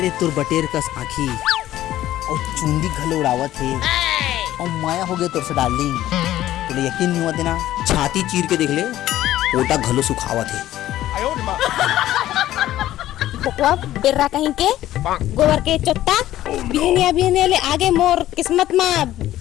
रे तोर बटेर कस आँखी और चुंदी घलो उड़ावत है और माया हो गए तोर से डार्लिंग। तुझे यकीन नहीं होते ना, छाती चीर के देख ले, ओटा घलो सुखावत है। बकवा बेर्रा कहीं के गोबर के चोट्टा बिहनिया ले आगे मोर किस्मत में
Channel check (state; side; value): quieter; right; 13.9 dB